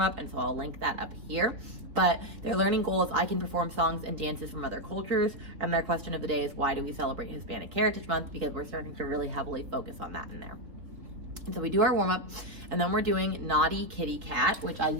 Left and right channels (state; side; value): late; left; 3.7 ms